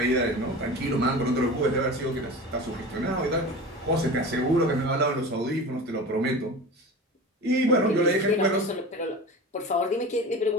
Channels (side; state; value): both; normal; correlation 0.32